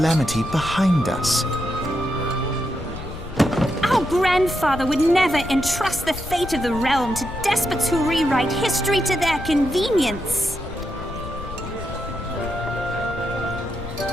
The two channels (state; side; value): noise; left; rumble, 10 dB below the sound